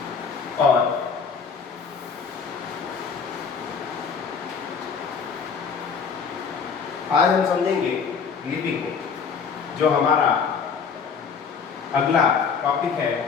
और आज हम समझेंगे लिपि को। जो हमारा अगला टॉपिक है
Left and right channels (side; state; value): right; quieter; 5.9 dB